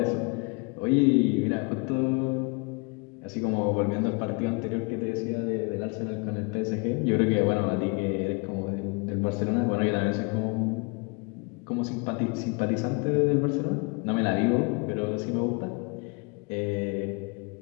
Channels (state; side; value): quieter; right; 31.9 dB